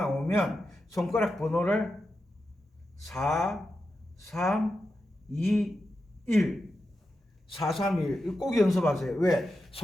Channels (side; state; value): both; normal; correlation 0.89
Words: 손가락 번호를 4 3 2 1 4 3 1 꼭 연습하세요. 왜?